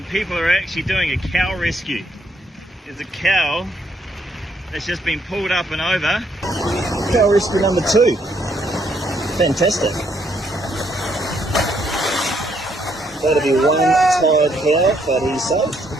and people are actually doing a cow rescue. There's a cow that's just been pulled up and over. Cow rescue number 2. Fantastic. That'll be one tired cow, but he's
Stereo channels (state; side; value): normal; both; correlation 0.72